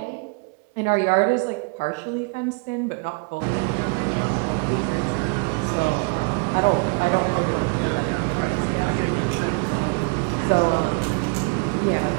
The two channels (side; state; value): left; quieter; 34.5 dB